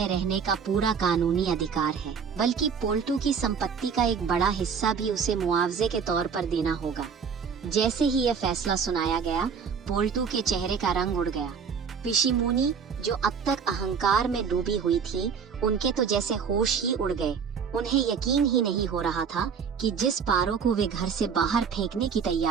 रहने का पूरा कानूनी अधिकार है, बल्कि पोल्टू की संपत्ति का एक बड़ा हिस्सा भी उसे मुआवजे के तौर पर देना होगा। जैसे ही यह फैसला सुनाया गया, पोल्टू के चेहरे का रंग उड़ गया। पिशिमुनी, जो अब तक अहंकार में डूबी हुई थी, उनके तो जैसे होश ही उड़ गए। उन्हें यकीन ही नहीं हो रहा था कि जिस पारो को वे घर से बाहर फेंकने की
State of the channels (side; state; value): left; quieter; 6.4 dB